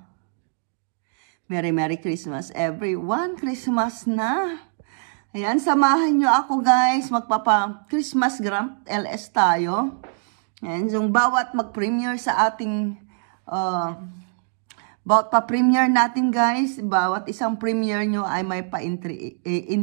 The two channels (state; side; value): silent; left; 63 dB below the other